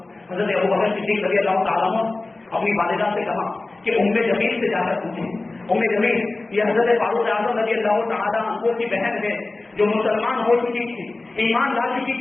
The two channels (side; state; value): right; quieter; 3.2 dB